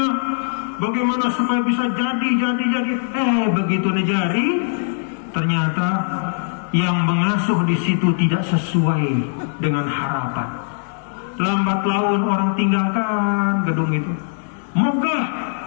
bagaimana supaya bisa jadi. Begitu nejari, ternyata yang mengasuh di situ tidak sesuai dengan harapan. Lambat laun orang tinggalkan gedung itu, megah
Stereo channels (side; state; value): right; silent; 62 dB below the other